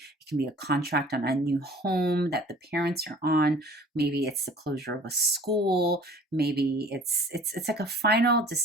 it can be a contract on a new home that the parents are on. Maybe it's the closure of a school. Maybe it's like a final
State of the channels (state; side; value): normal; both; correlation 0.49